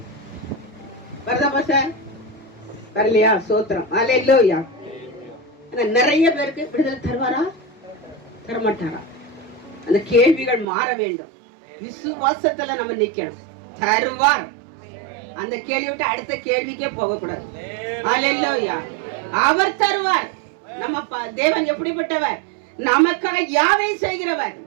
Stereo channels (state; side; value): drops out; left; at 10.7 s